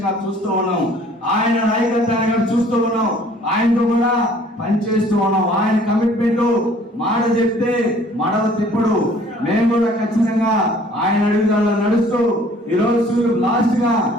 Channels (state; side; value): normal; both; correlation 0.55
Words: చూస్తూ ఉన్నాం. ఆయన నాయకత్వాన్ని కూడా చూస్తూ ఉన్నాం. ఆయనతో కూడా పనిచేస్తూ ఉన్నాం. ఆయన కమిట్మెంట్ మాట చెప్తే మడవ తిప్పుడు. మేము కూడా ఖచ్చితంగా ఆయన అడుగుదల నడుస్తూ ఈ రోజు లాస్ట్ గా